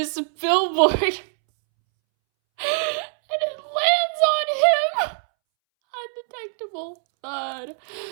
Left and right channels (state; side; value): silent; left; 64 dB below the other